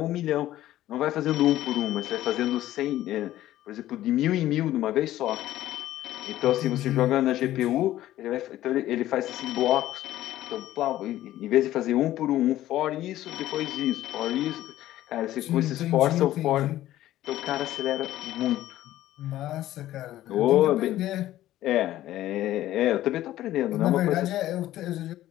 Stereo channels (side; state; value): right; quieter; 14.1 dB